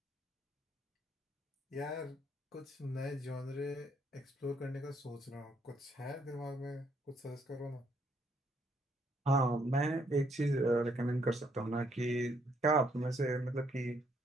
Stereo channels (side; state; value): both; normal; correlation 0.71